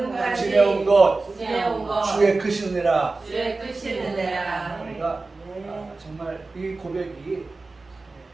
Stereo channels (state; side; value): quieter; left; 3.6 dB